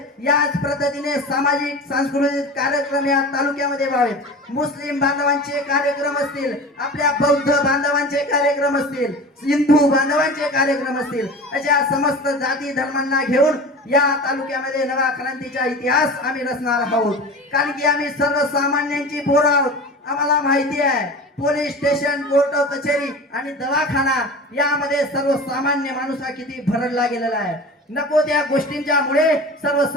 याच पद्धतीने सामाजिक सांस्कृतिक कार्यक्रम या तालुक्यामध्ये व्हावेत. मुस्लिम बांधवांचे कार्यक्रम असतील, आपल्या बौद्ध बांधवांचे कार्यक्रम असतील, हिंदू बांधवांचे कार्यक्रम असतील, अशा समस्त जाती धर्मांना घेऊन या तालुक्यामध्ये नवा क्रांतीचा इतिहास आम्ही रचणार आहोत. कारण की आम्ही सर्वसामान्यांची पोरं आहोत. आम्हाला माहिती आहे पोलीस स्टेशन, कोर्ट कचेरी आणि दवाखाना यामध्ये सर्वसामान्य माणूस हा किती भरडला गेलेला आहे. नको त्या गोष्टींच्या मुळे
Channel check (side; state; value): both; normal; correlation 0.34